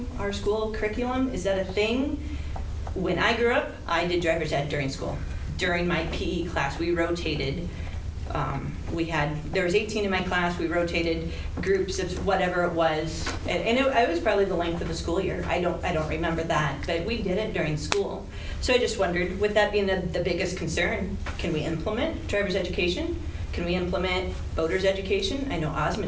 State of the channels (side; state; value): both; identical; correlation 1.00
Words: our school curriculum? Is that a thing? When I grew up, I did driver's ed during school. During my PE class, we rotated There was 18 in my class, we rotated groups of whatever it was, and it was probably the length of the school year. I don't remember that, but we did it during school. So I just wondered, with that being the biggest concern, can we implement driver's education? Can we implement voter's education? I know